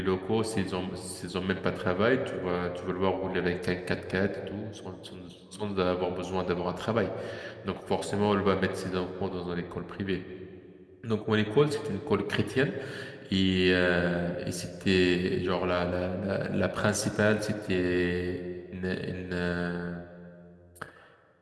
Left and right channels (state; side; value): identical; both; correlation 1.00